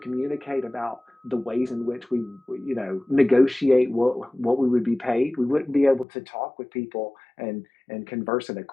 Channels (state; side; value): drops out; right; at 6.1 s